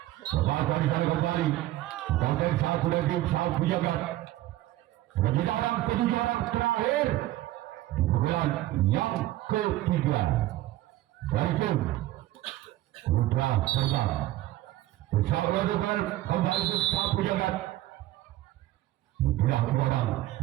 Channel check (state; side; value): quieter; left; 15.6 dB